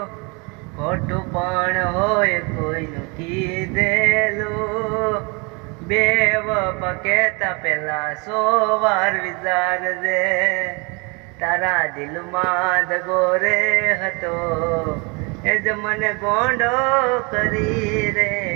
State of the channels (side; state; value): left; quieter; 30.1 dB